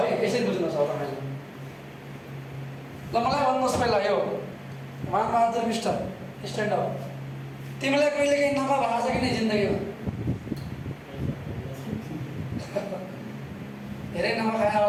यसरी बुझ्नुहोस् हो तपाईँले। ल मलाई भन्नुहोस् पहिला यो मानबहादुर मिस्टर स्ट्यान्ड अप, तिमीलाई कहिले काहीँ नाफा भएको छ कि नै जिन्दगीमा? धेरै नाफा खायो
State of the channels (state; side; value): identical; both; correlation 1.00